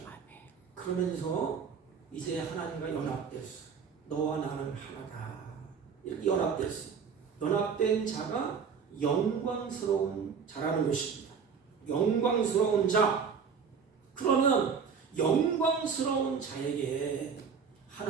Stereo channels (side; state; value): left; quieter; 6.2 dB